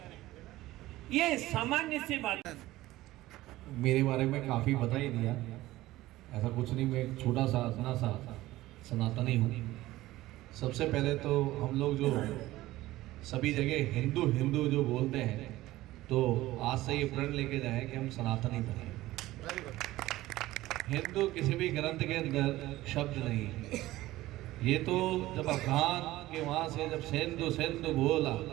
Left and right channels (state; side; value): quieter; left; 16.9 dB